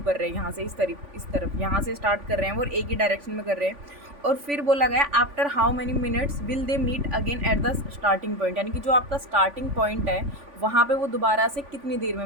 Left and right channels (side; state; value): left; late; 3.5 ms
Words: कर रहे हैं, यहाँ से इस तरफ यहाँ से स्टार्ट कर रहे हैं और एक ही डायरेक्शन में कर रहे हैं। और फिर बोला गया after how many minutes will they meet again at the starting point, यानी कि जो आपका स्टार्टिंग पॉइंट है वहाँ पे वो दोबारा से कितनी देर में